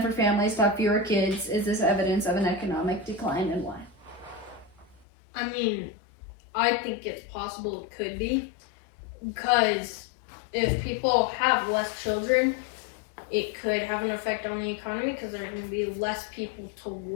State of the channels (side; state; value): right; drops out; at 5.1 s